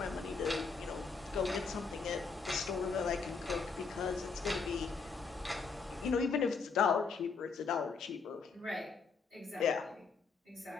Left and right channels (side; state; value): right; quieter; 4.8 dB